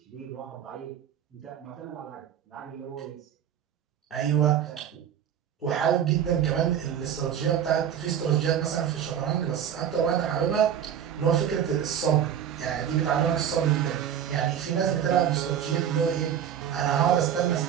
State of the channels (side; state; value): left; quieter; 9.2 dB